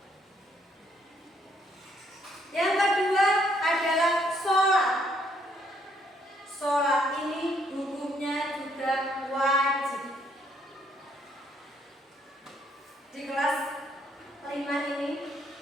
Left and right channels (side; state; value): both; normal; correlation 0.69